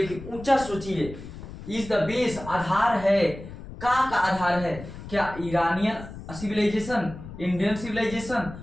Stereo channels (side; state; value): left; noise; rumble, 13 dB below the sound